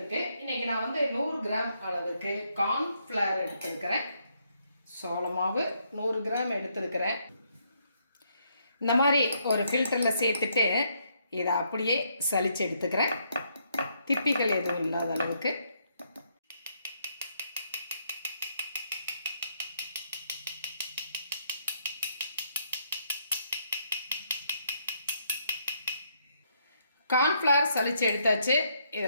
இன்னைக்கு நான் 100 கிராம் அளவுக்கு கார்ன்ஃபிளவர் எடுத்திருக்கிறேன். சோள மாவு 100 கிராம் எடுத்திருக்கிறேன். இந்த மாதிரி ஒரு ஃபில்டரில் சேர்த்துட்டு இதை அப்படியே சலிச்சு எடுத்துக்கிறேன். திப்பிகள் எதுவும் இல்லாத அளவுக்கு. கார்ன்ஃப்ளவர் சலிச்சு எடுத்தாச்சு.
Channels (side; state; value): both; inverted; correlation -0.74